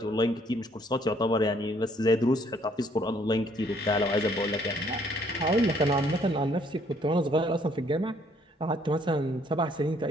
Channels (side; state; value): both; normal; correlation 0.65